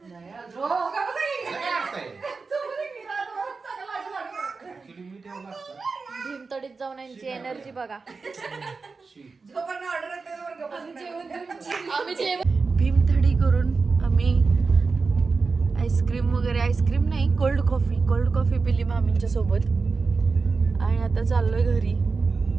भीमतडीत जाऊन यांची एनर्जी बघा. आम्ही जेवण भीमथडी करून आम्ही आईस्क्रीम नाही, कोल्ड कॉफी पिली मामींच्या सोबत आणि आता चाललोय घरी.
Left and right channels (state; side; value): quieter; left; 4.4 dB